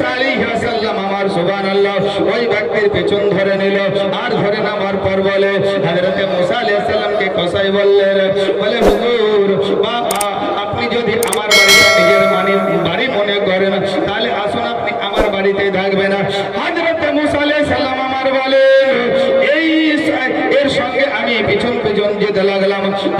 আলাইহিস সালাম আমার সুবহানাল্লাহ ওই ব্যক্তির পেছন ধরে নিল, আর ধরে নামার পর বলে হযরত মুসা আলাইহিস সালামকে কসাই বললেন, বলে হুজুর আপনি যদি আমার বাড়িটা নিজের বাড়ি মনে করেন তাহলে আসুন, আপনি আমার বাড়িতে থাকবেন। হযরত মুসা আলাইহিস সালাম আমার বলেন, এর সঙ্গে আমি পিছন যেতে লাগলাম।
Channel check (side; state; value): both; identical; correlation 1.00